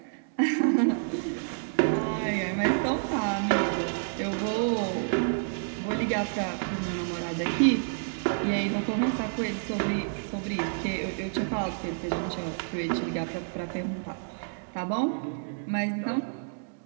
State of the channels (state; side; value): silent; left; digital silence